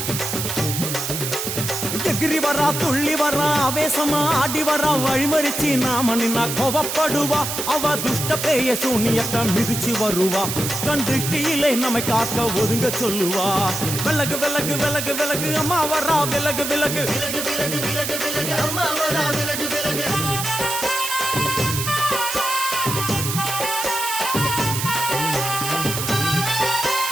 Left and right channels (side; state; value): right; noise; hiss, 3 dB below the sound